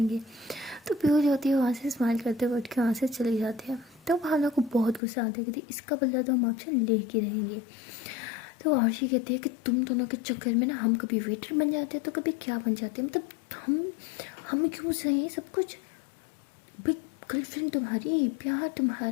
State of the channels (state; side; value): drops out; right; at 5.0 s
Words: तो पीहू जो होती है वहाँ से स्माइल करते हुए उठ के वहाँ से चली जाती है। तो भावना को बहुत गुस्सा आता है कि इसका बदला तो हम आपसे ले के रहेंगे। तो आरशी कहती है कि तुम दोनों के चक्कर में ना हम कभी वेटर बन जाते हैं तो कभी क्या बन जाते हैं, मतलब हम क्यों सही सब कुछ, भाई गर्लफ्रेंड तुम्हारी, प्यार